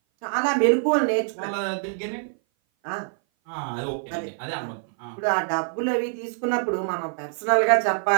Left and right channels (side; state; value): left; silent; 58 dB below the other